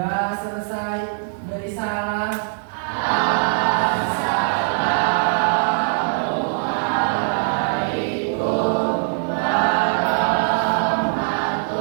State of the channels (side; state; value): left; silent; digital silence